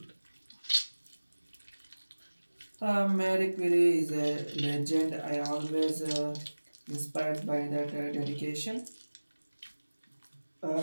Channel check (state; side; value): inverted; both; correlation -1.00